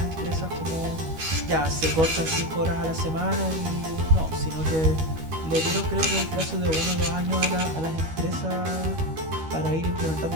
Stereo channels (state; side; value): late; left; 13 ms